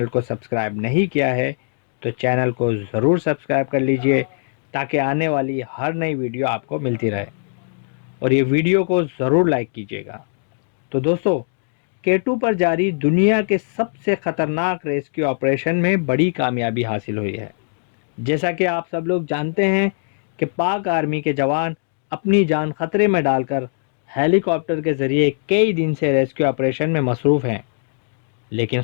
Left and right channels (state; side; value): silent; right; digital silence